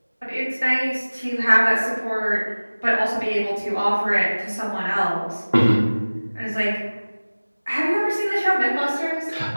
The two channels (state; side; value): inverted; both; correlation -1.00